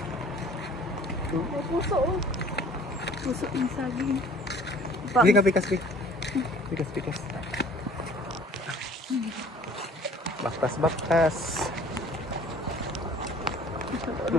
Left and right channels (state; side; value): normal; both; correlation 0.51